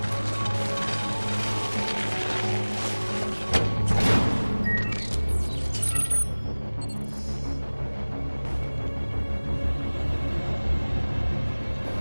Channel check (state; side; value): inverted; both; correlation -1.00